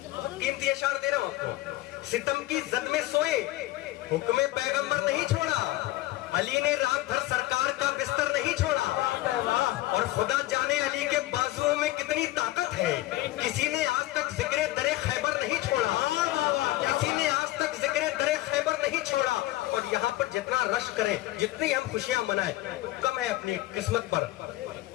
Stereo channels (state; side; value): quieter; right; 17.2 dB